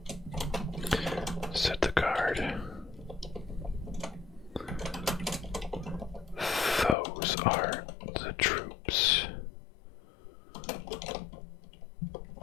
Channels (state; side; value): drops out; right; at 7.0 s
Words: Said the guard. Those are the troops.